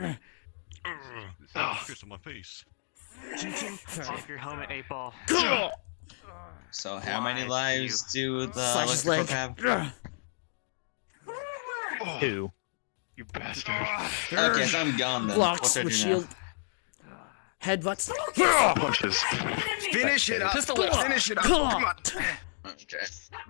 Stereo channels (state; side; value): silent; right; digital silence